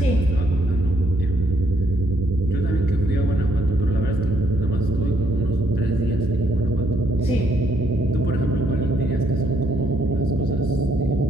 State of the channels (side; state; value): both; normal; correlation 0.71